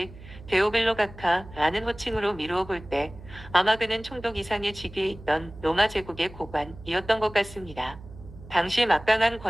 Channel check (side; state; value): right; noise; hum, 17 dB below the sound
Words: 데오빌로 각하라는 호칭으로 미루어 볼 때 아마 그는 총독 이상의 직위에 있던 로마 제국의 고관이었던 것 같습니다. 당시 막강한